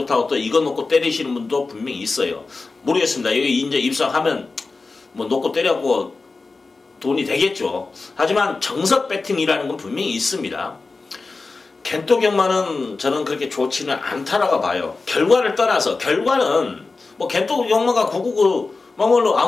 또 이거 놓고 때리시는 분도 분명히 있어요. 모르겠습니다. 여기 이제 입상하면 뭐 놓고 때려고 돈이 되겠죠. 하지만 정석 배팅이라는 건 분명히 있습니다. 겐토 경마는 저는 그렇게 좋지는 않다라고 봐요. 결과를 떠나서, 결과는 뭐 겐토 경마가 999 뭐로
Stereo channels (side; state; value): right; quieter; 3.9 dB